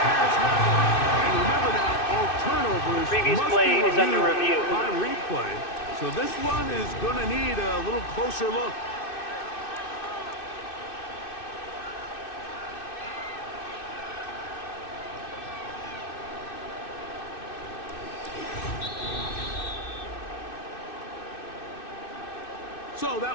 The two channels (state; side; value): late; right; 2.6 ms